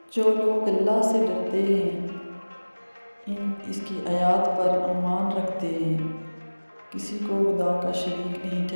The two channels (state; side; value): inverted; both; correlation -1.00